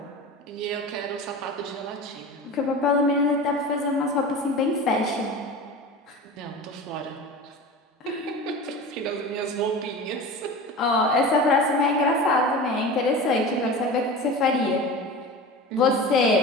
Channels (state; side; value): normal; both; correlation 0.32